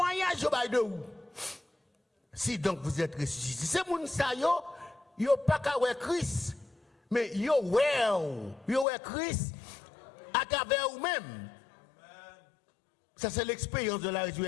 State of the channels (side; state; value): right; drops out; at 8.8 s